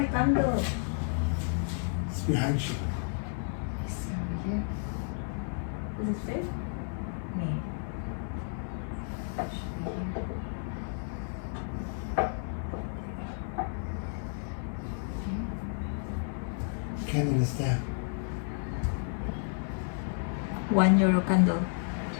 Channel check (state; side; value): silent; right; digital silence